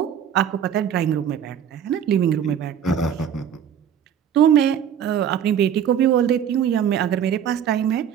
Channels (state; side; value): quieter; left; 8.9 dB